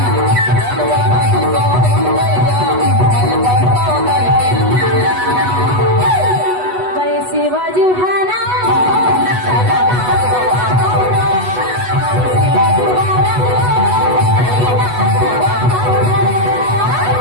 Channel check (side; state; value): left; late; 8.1 ms